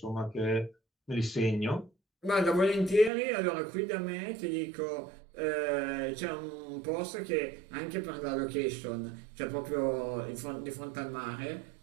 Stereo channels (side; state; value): left; drops out; at 3.1 s